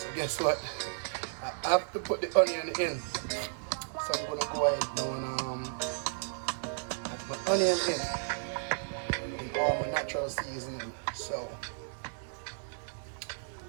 guess what? I have to put the onion in. So I'm gonna go ahead now and add my onion in all my natural seasoning. So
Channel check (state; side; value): silent; left; digital silence